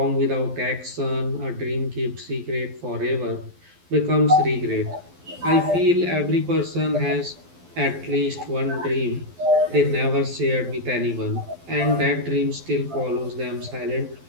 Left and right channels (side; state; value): left; late; 12 ms